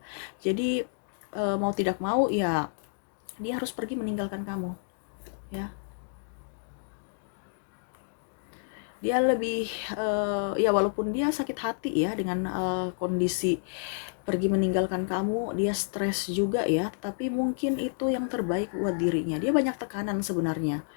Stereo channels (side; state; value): right; silent; digital silence